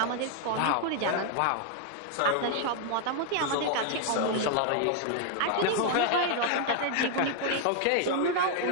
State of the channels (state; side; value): different; both; correlation 0.00